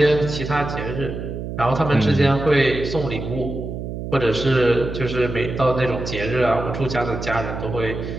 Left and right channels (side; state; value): right; noise; hum, 7 dB below the sound